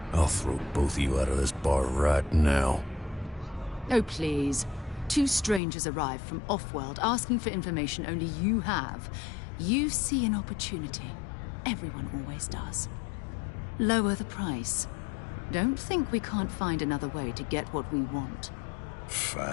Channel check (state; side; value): drops out; right; at 5.6 s